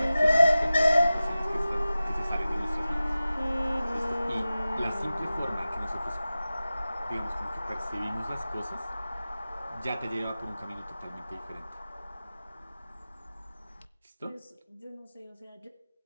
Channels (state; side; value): inverted; both; correlation -0.95